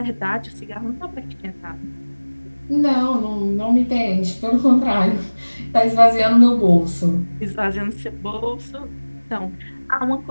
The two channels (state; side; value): inverted; both; correlation -1.00